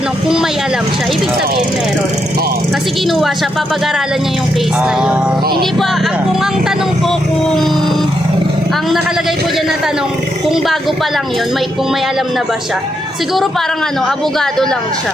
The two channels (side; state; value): both; normal; correlation 0.80